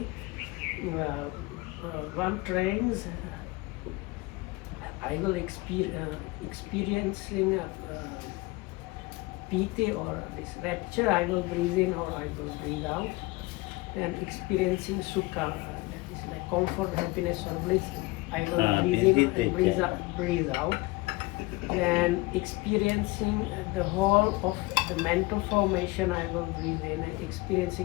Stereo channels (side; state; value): right; quieter; 22.2 dB